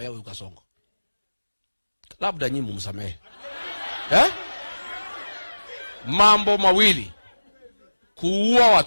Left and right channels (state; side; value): inverted; both; correlation -1.00